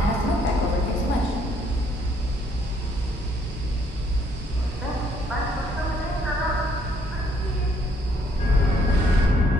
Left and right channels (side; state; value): both; normal; correlation 0.67